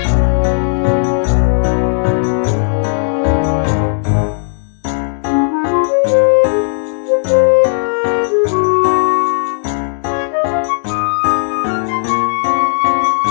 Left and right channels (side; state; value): right; silent; 62 dB below the other